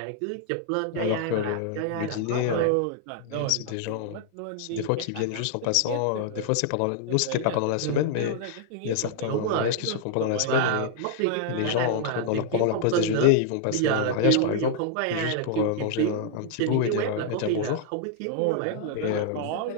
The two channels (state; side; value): different; both; correlation 0.00